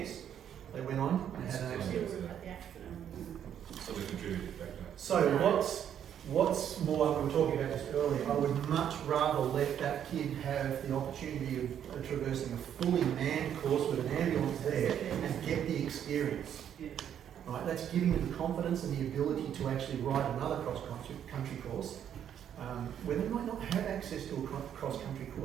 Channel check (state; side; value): quieter; left; 9.4 dB